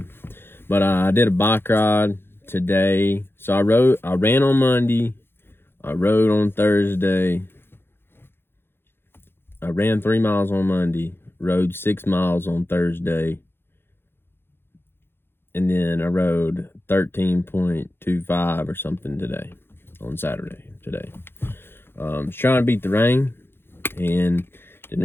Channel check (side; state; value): right; late; 0.11 ms